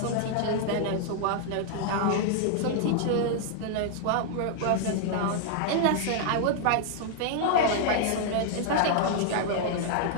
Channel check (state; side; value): different; both; correlation -0.01